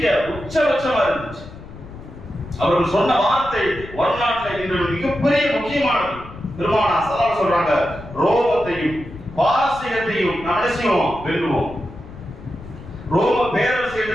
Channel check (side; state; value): left; noise; rumble, 16 dB below the sound